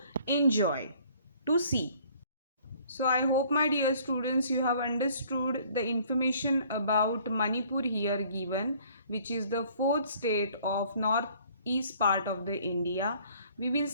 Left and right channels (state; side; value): inverted; both; correlation -0.57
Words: enjoy, to see. So I hope my dear students you have understood the information about Manipur here given, which is the fourth state of northeast part of the India. We will